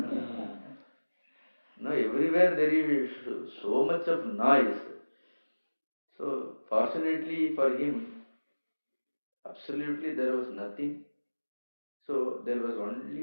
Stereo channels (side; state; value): both; inverted; correlation -1.00